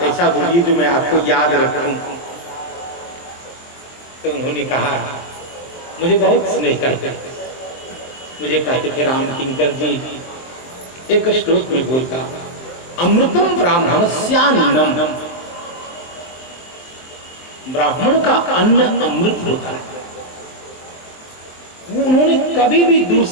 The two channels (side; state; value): right; late; 23 ms